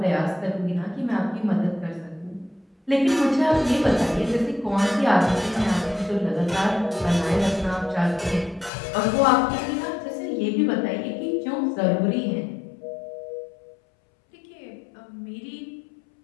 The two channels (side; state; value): right; drops out; at 8.7 s